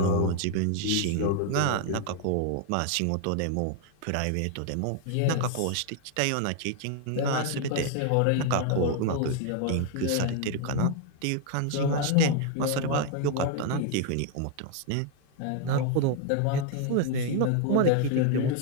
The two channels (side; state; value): both; different; correlation 0.00